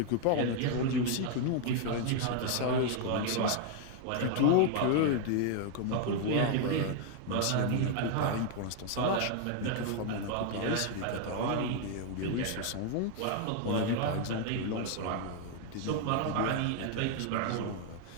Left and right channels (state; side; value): different; both; correlation 0.00